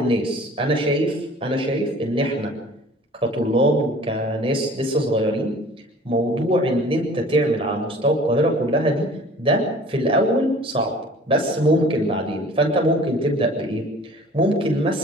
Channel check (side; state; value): both; normal; correlation 0.48